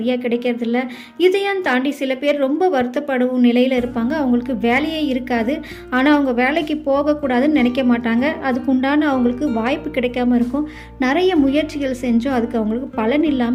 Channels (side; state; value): both; identical; correlation 1.00